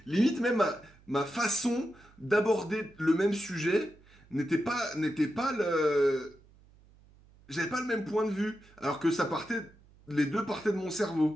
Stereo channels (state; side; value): noise; right; hum, 27 dB below the sound